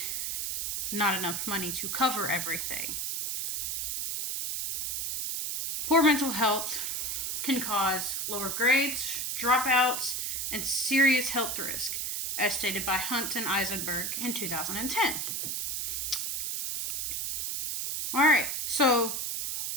not enough money to cover everything. Poor mental health can cause lower grades, dropouts, and serious health risk, as stated by Hunt and Eisenberg in 2010. All right, so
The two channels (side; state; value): right; noise; hiss, 1 dB below the sound